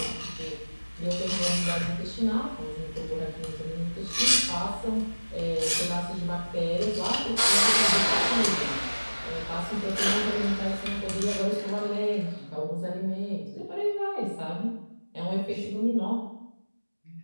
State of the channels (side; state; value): both; inverted; correlation -1.00